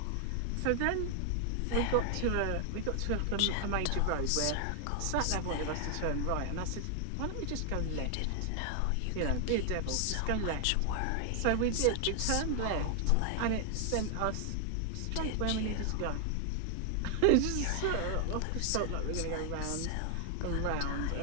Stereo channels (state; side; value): different; both; correlation 0.00